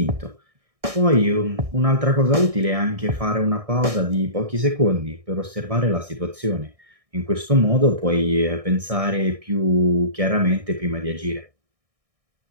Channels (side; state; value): left; late; 1.6 ms